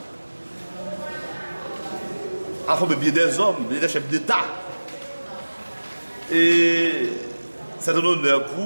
a formé bien des hommes, des chefs d'État. Et c'est un honneur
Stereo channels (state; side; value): inverted; both; correlation -1.00